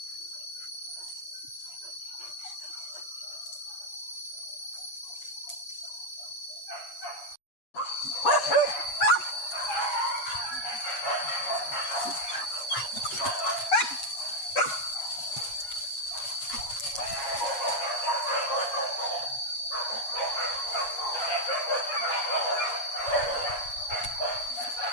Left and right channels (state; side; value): late; right; 8.3 ms